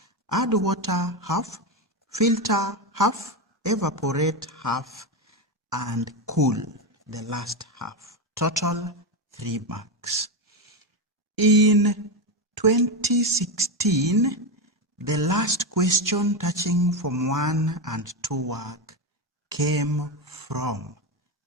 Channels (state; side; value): normal; both; correlation 0.12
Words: add water half, filter half, evaporate half, and cool the last half. Total 3 marks. In 2016, the last question touching Form 1 and 2 work came from